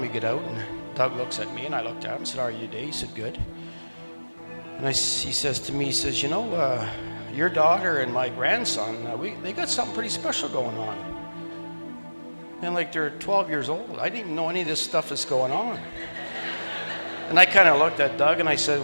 we get out, and Doug looks at me, and I looked at him and said, "How are you today?" He said, "Good." And he says to me, he says, "You know, your daughter and my grandson, they got something pretty special going on. And like they're 12 years old. I didn't even know any of this stuff is going on." And I kind of looked at Doug and I said,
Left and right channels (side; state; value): both; inverted; correlation -1.00